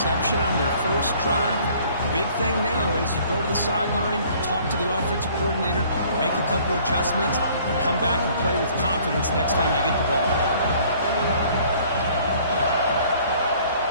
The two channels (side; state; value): both; inverted; correlation -0.56